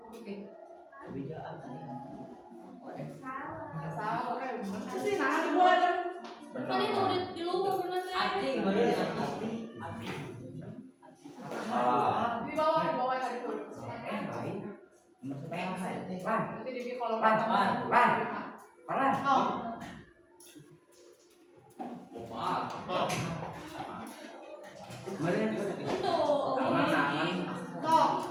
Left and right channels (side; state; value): both; identical; correlation 1.00